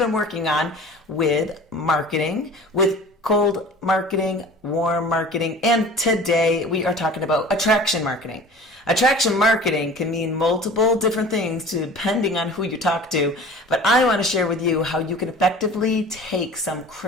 working on with marketing, with cold marketing, warm marketing, and today we are talking about attraction marketing. Attraction marketing can mean multiple different things depending on who you talk to, but I want to share with you how you can effectively take some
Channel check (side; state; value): both; normal; correlation 0.41